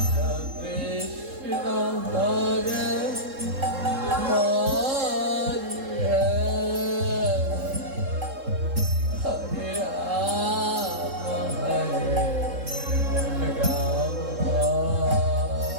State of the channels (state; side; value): late; left; 3.7 ms